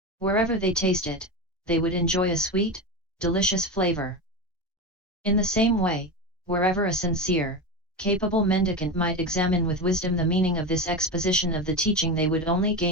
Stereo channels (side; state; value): both; normal; correlation 0.20